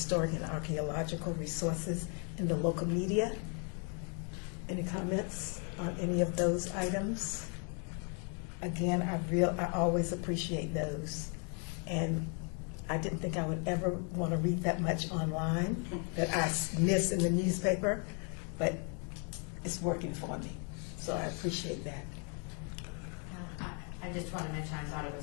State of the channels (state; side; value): quieter; right; 39.2 dB